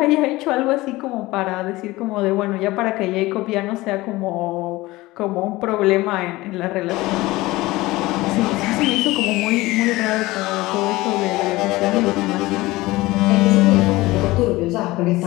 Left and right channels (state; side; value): quieter; right; 19.6 dB